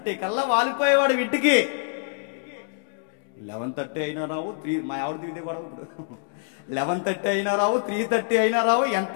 కల్లా వాలిపోయేవాడు ఇంటికి. 11:30 అయినా రావు, మా ఆవిడ దిగితే కూడా ఇప్పుడు 11:30 అయినా రావు, 3:30 అయినా రావు,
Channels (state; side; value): silent; right; digital silence